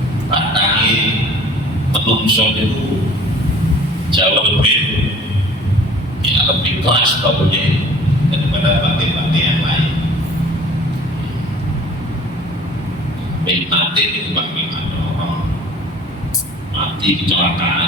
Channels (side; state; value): both; normal; correlation 0.49